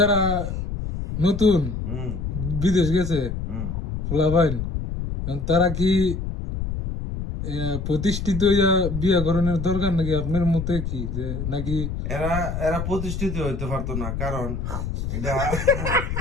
নতুন বিদেশ গেছে ফুলাবাইন, তারা কি প্রতিষ্ঠিত বিয়ে করানোর দরকার নাকি আপনার মতে? কি যে নাকি এরা প্রতিষ্ঠিত হইতে পারতো না, কারণ এটা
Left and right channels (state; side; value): noise; left; rumble, 4 dB below the sound